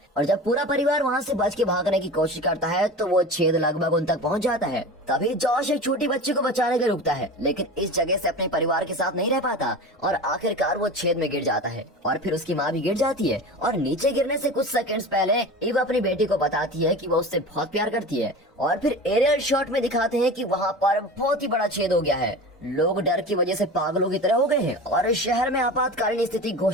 और जब पूरा परिवार वहाँ से बच के भागने की कोशिश करता है तो वो छेद लगभग उन तक पहुँच जाता है। तभी जॉश एक छोटी बच्ची को बचाने के रुकता है, लेकिन इस जगह से अपने परिवार के साथ नहीं रह पाता और आखिरकार वो छेद में गिर जाता है और फिर उसकी माँ भी गिर जाती है। और नीचे गिरने से कुछ सेकंड्स पहले ईव अपनी बेटी को बताती है कि वो उससे बहुत प्यार करती है। और फिर एरियल शॉट में दिखाते हैं कि वहाँ पर बहुत ही बड़ा छेद हो गया है। लोग डर की वजह से पागलों की तरह हो गए हैं और शहर में आपातकालीन स्थिति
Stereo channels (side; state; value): both; normal; correlation 0.32